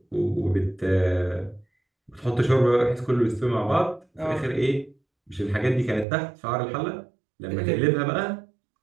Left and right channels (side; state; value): left; drops out; at 6.1 s